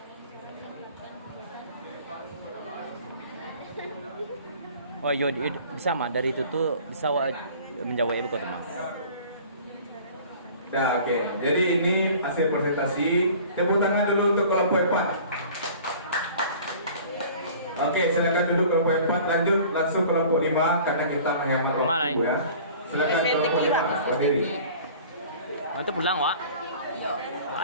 Oh iya, bisa mah dari itu tuh bisa menjawab ibu kota mah. Nah, oke. Jadi ini hasil presentasi. Tepuk tangan dulu untuk kelompok 4. Oke, silakan duduk kelompok 4. Lanjut langsung kelompok 5 karena kita menghemat waktu ya. Silakan kelompok 5. Berdiri. Oh, itu pulang, Wak.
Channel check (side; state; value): both; inverted; correlation -0.46